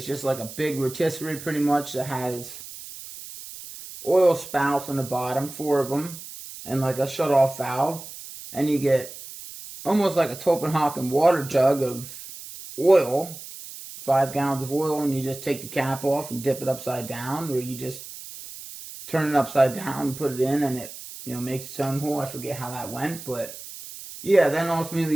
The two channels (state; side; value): noise; right; hiss, 13 dB below the sound